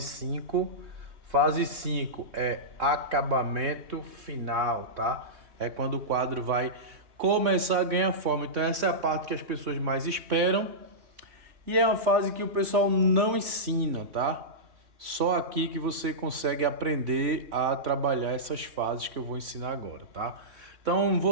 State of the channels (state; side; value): late; left; 3.2 ms